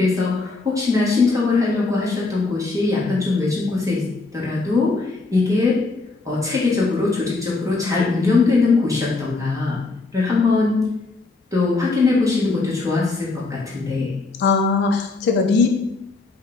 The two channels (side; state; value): right; quieter; 3.6 dB